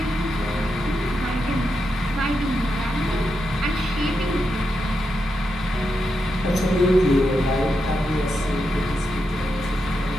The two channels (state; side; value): normal; both; correlation 0.85